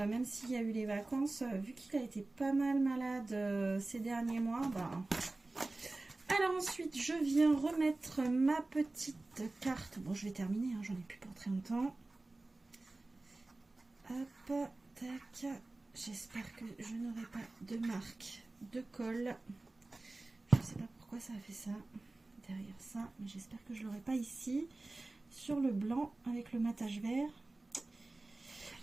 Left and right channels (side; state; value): left; quieter; 3.0 dB